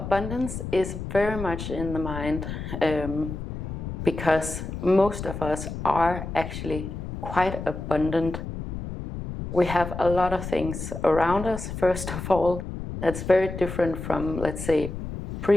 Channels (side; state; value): left; noise; rumble, 7 dB below the sound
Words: is very much in the mind because most of us are actually quite abundant. We have a lot of things around us, first of all. That's very different from, let's say,